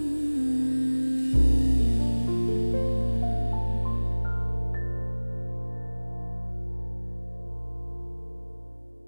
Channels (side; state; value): both; inverted; correlation -1.00